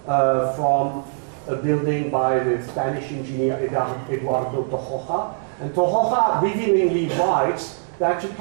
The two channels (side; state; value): left; silent; digital silence